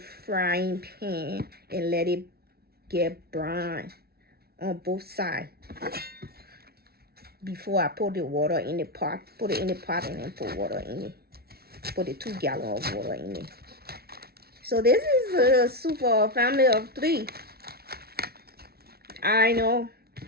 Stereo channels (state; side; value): late; left; 0.45 ms